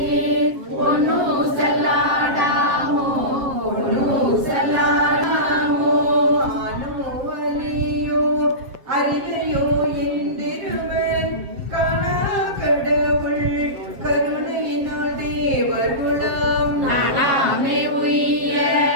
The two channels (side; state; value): left; late; 7.5 ms